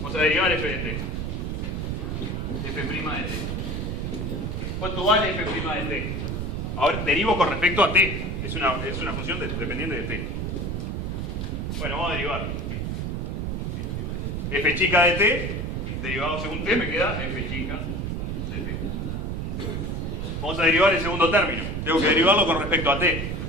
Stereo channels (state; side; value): noise; right; rumble, 2 dB below the sound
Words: a derivar f de t. F' de t. ¿Cuánto vale f' de t? Ahora derivo con respecto a t. Es una función dependiente de t. Bueno, vamos a derivar. F chica de t, derivado según t, me queda f chica de t. Vamos a derivar el segundo término. Tengo que derivarlo con respecto a t.